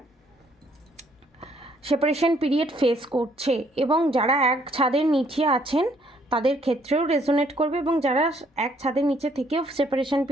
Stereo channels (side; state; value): both; normal; correlation 0.66